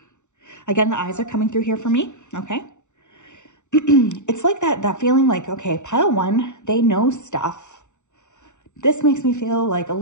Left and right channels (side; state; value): right; late; 0.84 ms